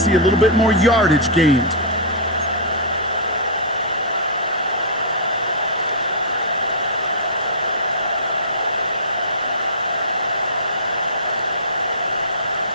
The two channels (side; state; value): both; normal; correlation -0.17